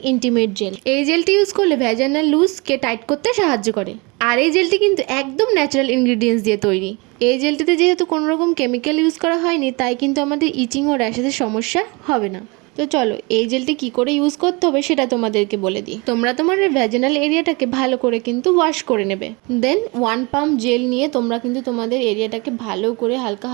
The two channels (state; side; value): quieter; left; 27.8 dB